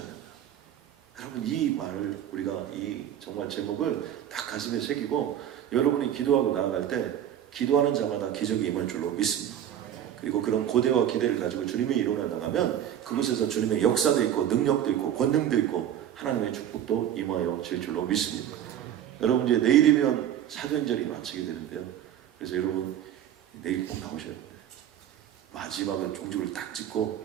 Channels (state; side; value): quieter; left; 10.4 dB